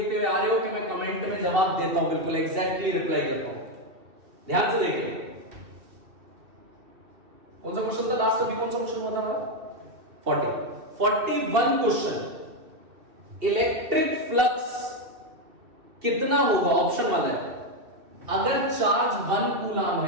हुए आ रहे हो कि मैं कमेंट में जवाब देता हूं, बिल्कुल एग्जैक्टली रिप्लाई करता हूं। ध्यान से देखिए, कौन सा क्वेश्चन था लास्ट, अभी कौन सा क्वेश्चन होता था, 41 क्वेश्चन। इलेक्ट्रिक फ्लक्स कितना होगा, ऑप्शन वाला है। अगर चार्ज 1 कूलम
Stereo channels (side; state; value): left; late; 2.7 ms